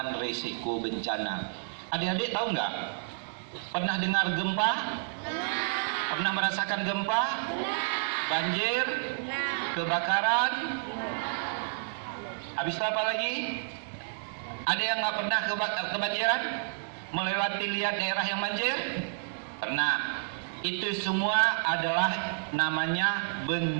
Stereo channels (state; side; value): silent; left; digital silence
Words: risiko bencana. Adik-adik tahu nggak? Pernah dengar gempa? Pernah merasakan gempa? Banjir? Kebakaran? Habis itu apa lagi? Ada yang nggak pernah kebanjiran? Melewati lihat daerah yang banjir? Pernah. Itu semua adalah namanya